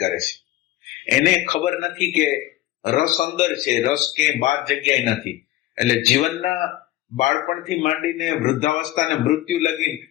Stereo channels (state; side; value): quieter; right; 15.7 dB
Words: કરે છે. એને ખબર નથી કે રસ અંદર છે, રસ ક્યાંય બાર જગ્યાએ નથી. એટલે જીવનના બાળપણથી માંડીને વૃદ્ધાવસ્થા અને મૃત્યુ લગીને